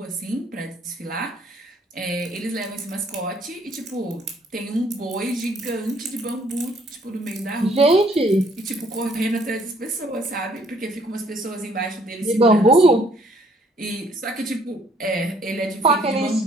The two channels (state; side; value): normal; both; correlation 0.63